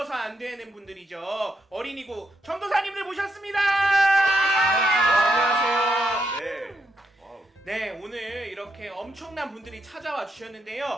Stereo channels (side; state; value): both; normal; correlation 0.79